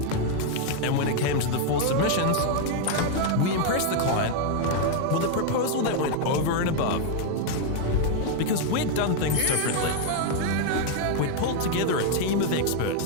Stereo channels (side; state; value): both; different; correlation 0.00